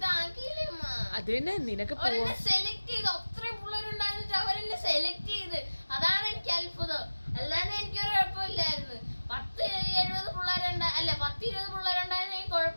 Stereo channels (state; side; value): inverted; both; correlation -1.00